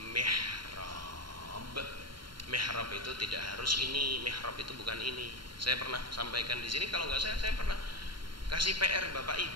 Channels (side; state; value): left; late; 0.73 ms